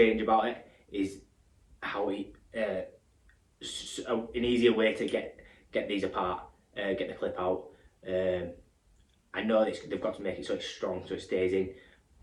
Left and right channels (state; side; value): identical; both; correlation 1.00